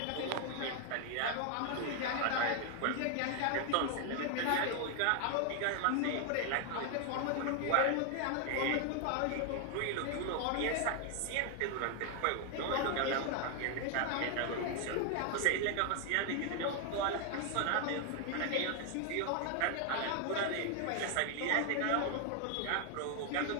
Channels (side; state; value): both; different; correlation 0.00